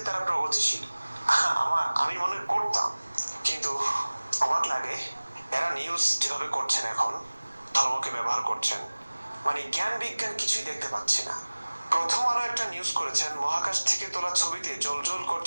তারা প্রগতিশীল। আমি মনে করতাম, কিন্তু অবাক লাগে এরা নিউজ যেভাবে করছেন, এখন ধর্মকে ব্যবহার করছেন, মানে জ্ঞান বিজ্ঞান কিছুই দেখতে পাচ্ছি না। প্রথম আলো একটা নিউজ করেছেন, মহাকাশ থেকে তোলা ছবিতে জ্বলজ্বল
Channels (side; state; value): both; inverted; correlation -1.00